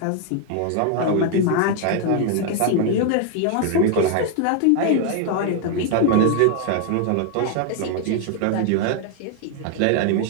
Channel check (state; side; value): different; both; correlation 0.00